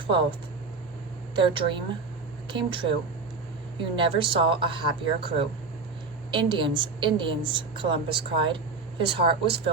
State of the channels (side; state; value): left; quieter; 4.2 dB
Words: their dream came true. You never saw a happier crew. Indians, Indians, Columbus cried. His heart was